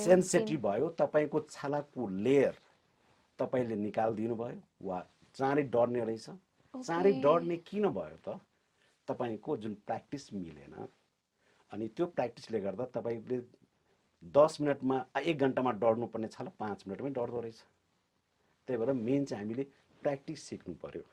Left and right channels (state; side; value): identical; both; correlation 1.00